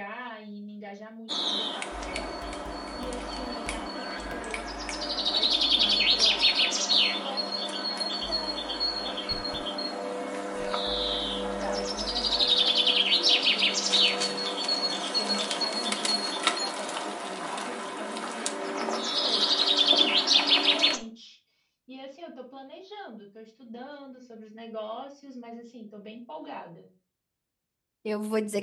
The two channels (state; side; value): identical; both; correlation 1.00